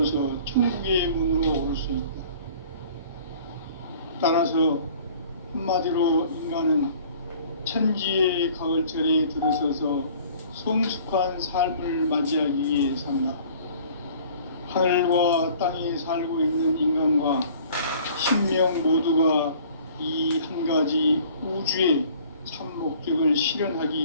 천국의 문으로 올 수 있다. 따라서 한마디로 인간은 천지의 가을철에 들어서서 성숙한 삶을 맞이하기 위해 산다. 하늘과 땅에 살고 있는 인간과 신명 모두가 이 한 가지 우주의 참 목적을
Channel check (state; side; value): inverted; both; correlation -0.51